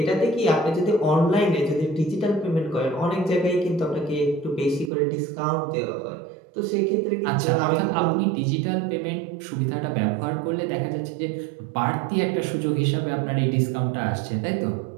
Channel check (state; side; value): drops out; left; at 4.9 s